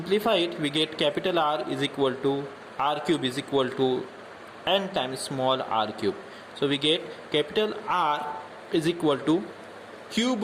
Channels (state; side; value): identical; both; correlation 1.00